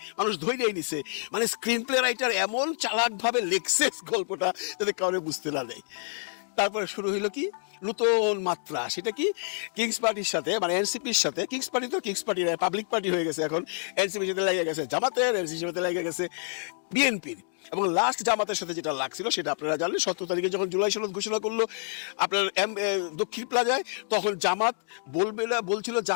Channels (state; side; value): silent; right; digital silence